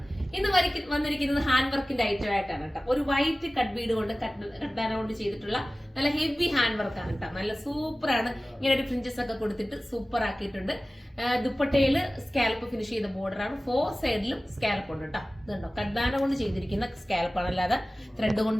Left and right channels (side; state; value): both; normal; correlation 0.97